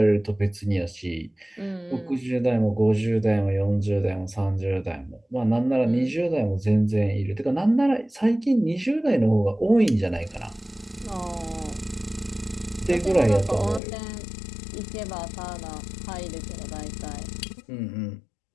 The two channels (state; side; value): drops out; right; at 13.8 s